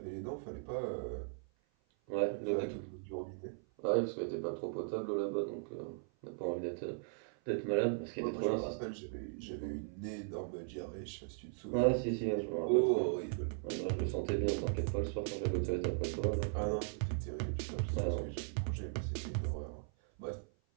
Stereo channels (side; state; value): left; silent; 52 dB below the other